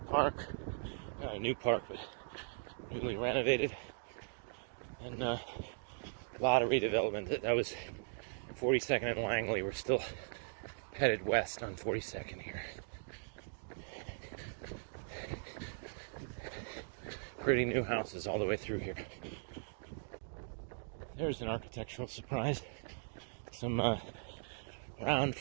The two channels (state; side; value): silent; left; digital silence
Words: not a new park, but newly renovated, and a lot of redevelopment. That was 42nd and Langley. We're still headed west on 42nd here. Pretty new houses all the way through here. There's an architectural surprise. Some round